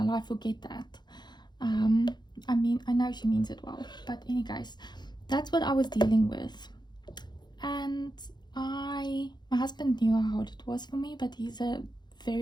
life forget that. I mean, I know she means it well, but any case, that's what I was dealing with. And my husband knew how hard it was for me, but he's a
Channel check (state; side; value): late; right; 0.21 ms